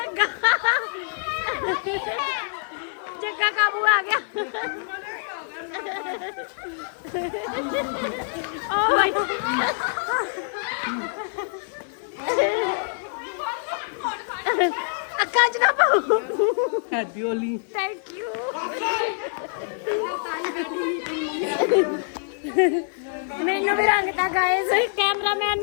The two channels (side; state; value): right; silent; 62 dB below the other